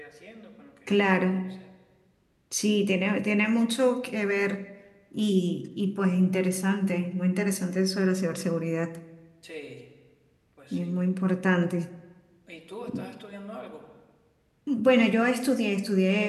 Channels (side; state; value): both; identical; correlation 1.00